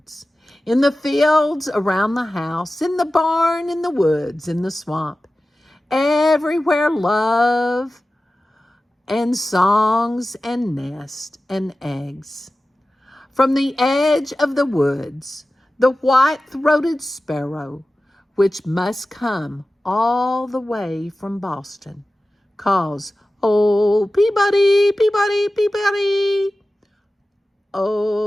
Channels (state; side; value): normal; both; correlation 0.95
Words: In the fields around the house, in the barn, in the woods, in the swamp. Everywhere love and songs and nests and eggs. From the edge of the woods, the white-throated sparrow, which must come all the way from Boston, calls, "Oh, Peabody, Peabody, Peabody."